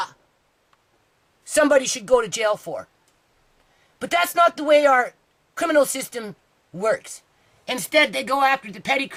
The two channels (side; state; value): both; identical; correlation 1.00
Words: somebody should go to jail for. But that's not the way our criminal system works. Instead, they go after the petty